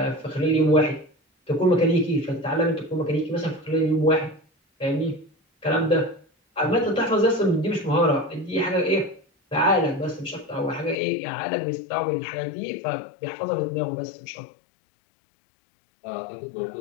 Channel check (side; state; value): right; drops out; at 11.0 s